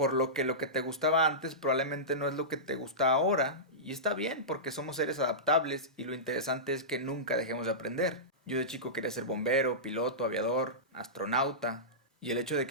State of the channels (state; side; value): normal; both; correlation -0.17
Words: lo que te gustaba antes probablemente no es lo que te gusta ahora, y está bien porque somos seres adaptables y lo interesante es que nunca dejemos de aprender. Yo de chico quería ser bombero, piloto, aviador, astronauta, y el hecho de